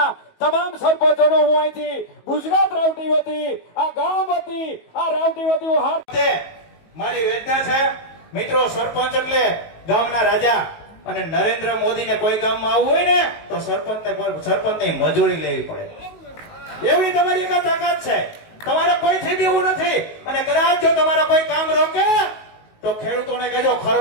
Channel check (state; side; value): late; right; 19 ms